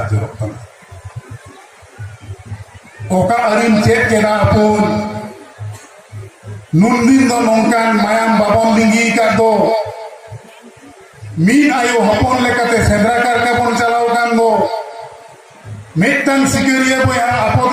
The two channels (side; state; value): both; identical; correlation 1.00